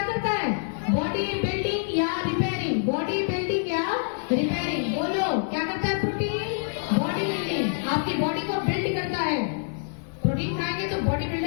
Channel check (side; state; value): right; silent; digital silence